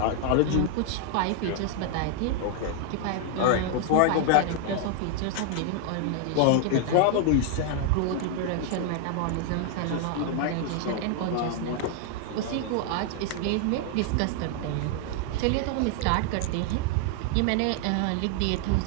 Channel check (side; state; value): both; different; correlation 0.00